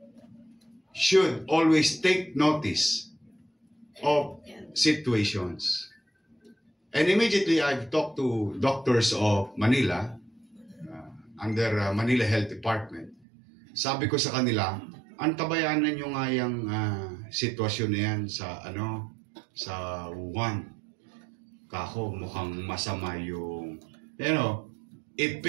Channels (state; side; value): drops out; left; at 13.2 s